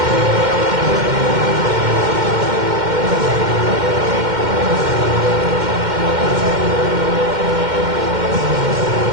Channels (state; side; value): late; left; 2.1 ms